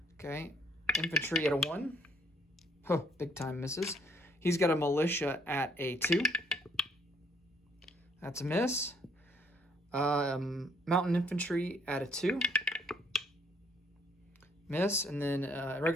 Okay, infantry at a 1. Oh, big time misses. He's got a militia at a 2. That's a miss. Mountain infantry at a 2. Miss, and then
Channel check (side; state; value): both; normal; correlation 0.66